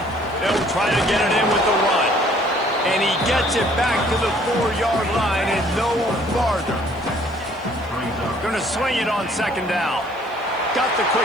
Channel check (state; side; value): noise; left; hiss, 30 dB below the sound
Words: They'll try to get it in with the run. And he gets it back to the 4-yard line and no farther. Going to swing it on 2nd down. Got the